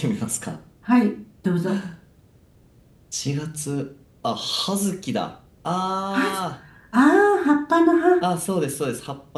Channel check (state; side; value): identical; both; correlation 1.00